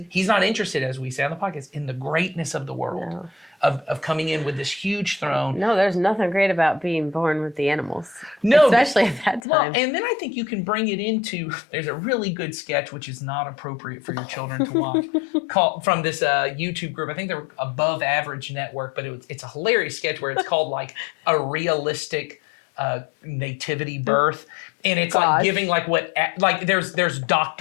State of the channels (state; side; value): drops out; right; at 9.4 s